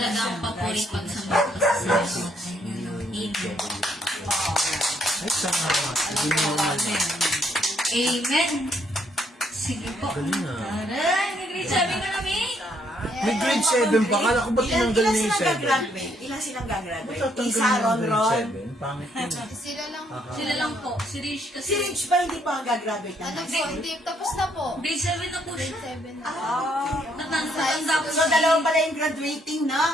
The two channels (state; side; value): normal; both; correlation 0.70